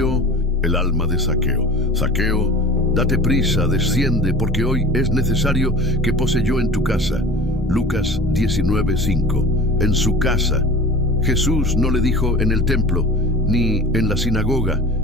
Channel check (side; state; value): both; normal; correlation 0.39